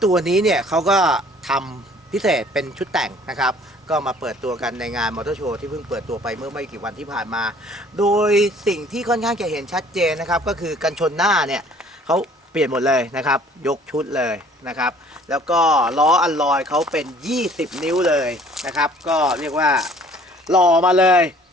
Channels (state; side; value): normal; both; correlation 0.54